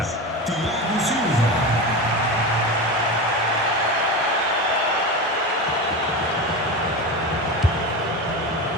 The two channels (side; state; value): both; normal; correlation 0.23